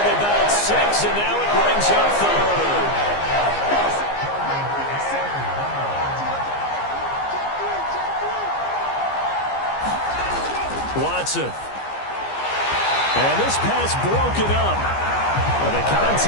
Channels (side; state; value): right; late; 15 ms